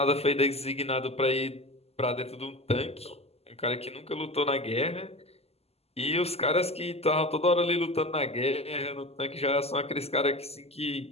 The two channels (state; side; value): late; right; 0.29 ms